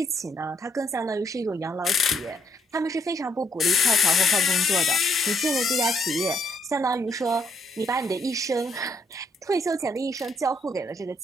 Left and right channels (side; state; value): both; normal; correlation 0.71